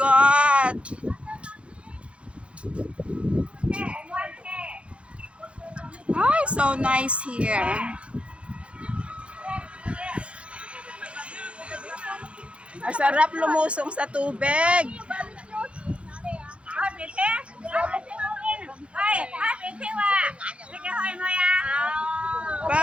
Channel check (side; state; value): left; late; 0.060 ms